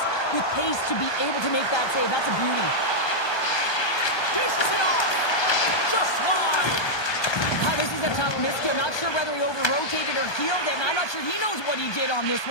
with pace to be able to make that save. That's a beauty. Dishes it off. Just wide. This is a tough miss. I'm not sure whether he over-rotated or healed it, and I'm not sure he knows what he did on this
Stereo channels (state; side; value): late; right; 1.2 ms